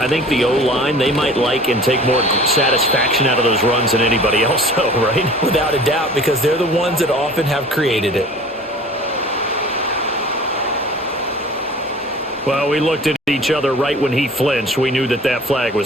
think the O-line, they might like and take more satisfaction out of those runs than anybody else, though, right? Without a doubt, because they're the ones that often have created it. Well, we looked at each other right when he flinched. We knew that that flag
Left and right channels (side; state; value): both; normal; correlation 0.45